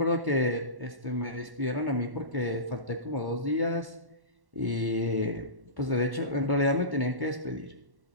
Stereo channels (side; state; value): left; late; 1.1 ms